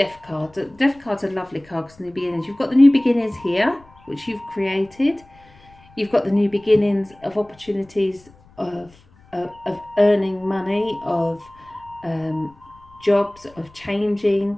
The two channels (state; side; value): noise; left; rumble, 27 dB below the sound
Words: card. The Death card's a lovely card because new beginnings. You've got the new beginnings here, which you've created. You've got the new beginnings of opportunities of earning money, of jobs, of